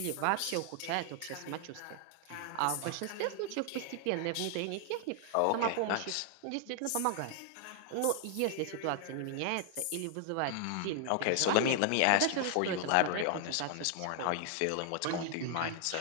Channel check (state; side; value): different; both; correlation 0.00